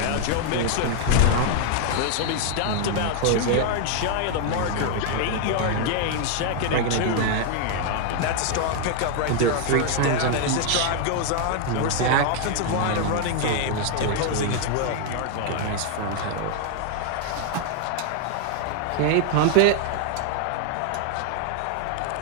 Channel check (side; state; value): both; different; correlation 0.00